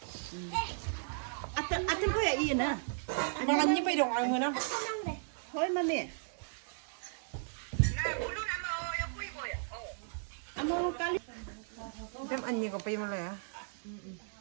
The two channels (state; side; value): silent; left; digital silence